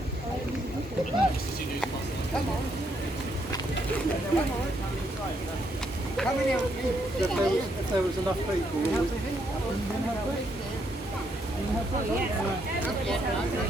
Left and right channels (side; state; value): both; normal; correlation 0.74